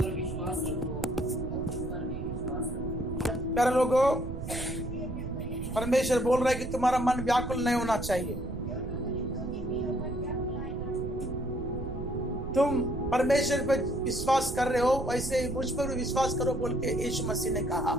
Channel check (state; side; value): noise; right; rumble, 7 dB below the sound